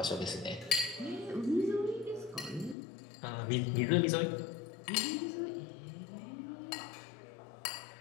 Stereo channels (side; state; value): right; drops out; at 2.8 s